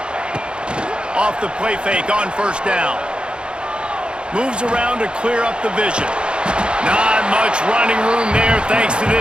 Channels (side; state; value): left; late; 0.053 ms